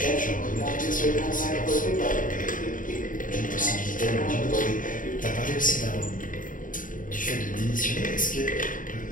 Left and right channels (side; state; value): right; late; 0.39 ms